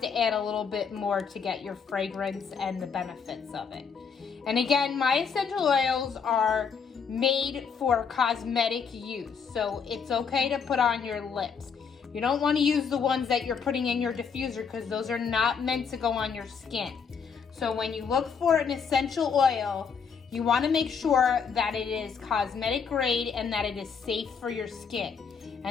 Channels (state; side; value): quieter; right; 6.2 dB